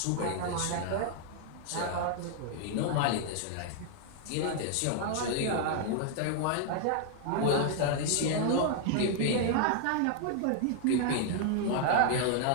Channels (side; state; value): both; different; correlation 0.00